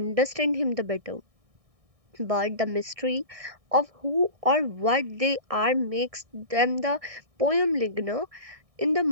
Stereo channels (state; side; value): late; left; 1.6 ms